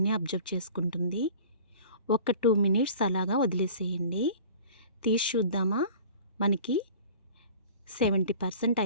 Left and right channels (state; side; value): inverted; both; correlation -0.44